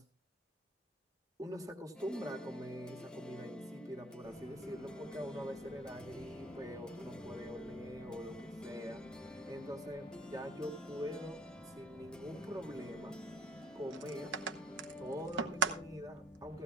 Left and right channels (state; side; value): normal; both; correlation 0.54